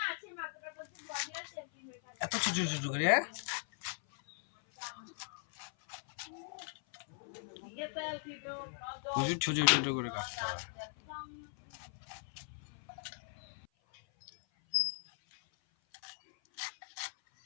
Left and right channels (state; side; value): silent; right; 52 dB below the other